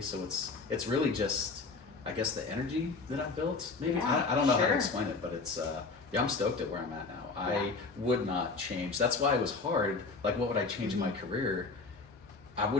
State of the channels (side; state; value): right; quieter; 4.1 dB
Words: so it's really just, I guess, the energy that I've built. Maybe Yeah, I don't know how to sure. explain it, but it's I'm stoked at where I'm at now. Yeah. I would not change. That's why it was hard. Like, what would I change in my career? I